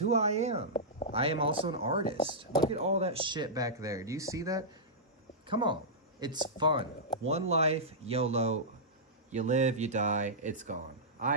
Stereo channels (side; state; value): both; normal; correlation -0.13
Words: I am. I am also an artist. Look at all that shit back there. Do you see that? Come on. It's fun. One life, YOLO. You live, you die, it's gone.